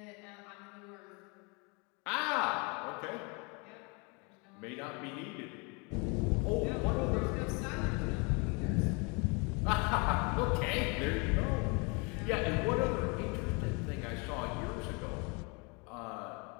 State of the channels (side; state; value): right; quieter; 31.3 dB